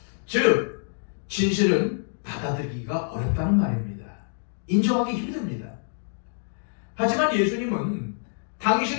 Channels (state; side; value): silent; right; digital silence